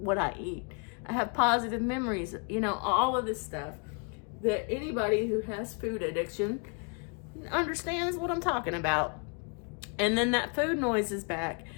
I eat. I have positive memories, you know, all of this stuff that anybody who has food addiction understands what I'm talking about. And then that food noise is back.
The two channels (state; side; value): quieter; right; 36.3 dB